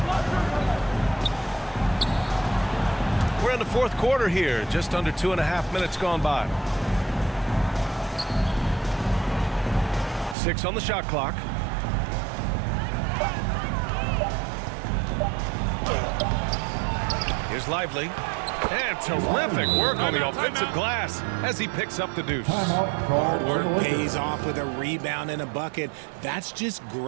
we're in the fourth quarter here. Just under 2.5 minutes gone by. 6 on the shot clock. Here's Lively. And terrific work on the offensive glass as he picks up the deuce. Hard work pays off with a rebound and a bucket. That's just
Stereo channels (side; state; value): left; drops out; at 10.4 s